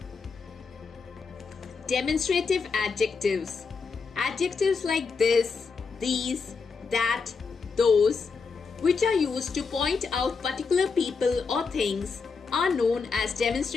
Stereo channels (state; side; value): quieter; right; 5.0 dB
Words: Demonstrative adjectives. Adjectives like this, these, that, those, which are used to point out particular people or things, are known as